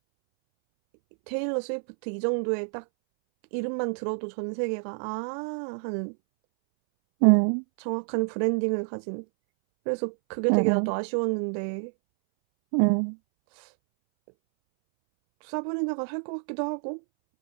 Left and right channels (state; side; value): silent; left; 60 dB below the other